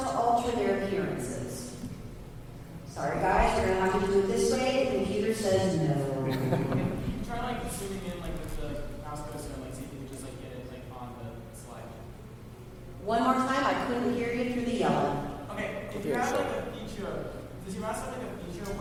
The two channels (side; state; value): both; identical; correlation 1.00